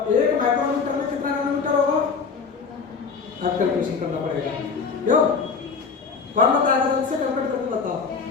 1 माइक्रोमीटर में कितना नैनोमीटर होगा, आप कैलकुलेशन करना पड़ेगा, क्यों, कौन बताएगा, जल्दी से कैलकुलेट करके बताओ।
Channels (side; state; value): right; quieter; 5.3 dB